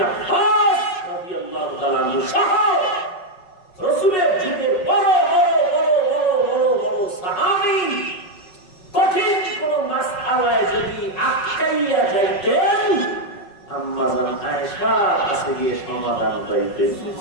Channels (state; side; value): late; right; 5.4 ms